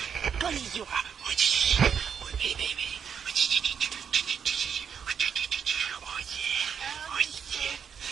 Konnichiwa. Oh, baby. Oh,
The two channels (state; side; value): quieter; left; 7.3 dB